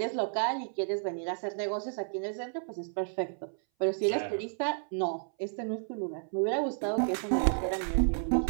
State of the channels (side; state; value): left; silent; 57 dB below the other